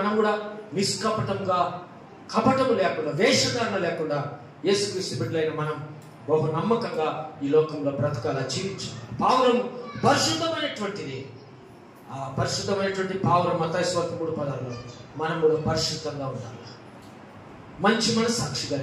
కూడా నిష్కపటంగా, కపటము లేకుండా, వేషధారణ లేకుండా యేసుక్రీస్తు బిడ్డలైన మనం బహు నమ్మకంగా ఈ లోకంలో బ్రతకాల, జీవించాలి. పావురం పరిశుద్ధమైనటువంటిది. ఆ పరిశుద్ధమైనటువంటి పావురం మత్తయి సువార్త 3:16లో మనం కూడా పరిశుద్ధంగా ఉండాలి, మంచి మనస్సాక్షి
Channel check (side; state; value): both; identical; correlation 1.00